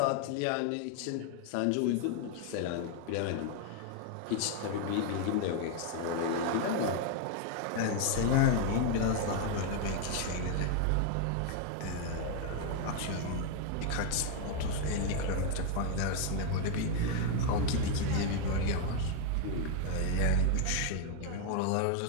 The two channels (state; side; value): different; both; correlation 0.00